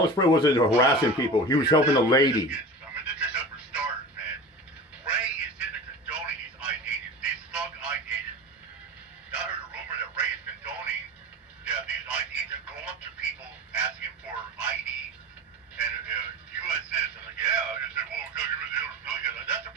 Ray wasn't harassing people. He was helping a lady. I mean, this is for starters, man. Ray is in the condoning these ICE agents, these thug ICE agents. I heard a rumor that Ray is condoning these ICE agents go up to people asking for ID. And U.S. citizen, like, yeah, I said, well, because you was illegal. That's a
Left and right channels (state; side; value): normal; both; correlation 0.33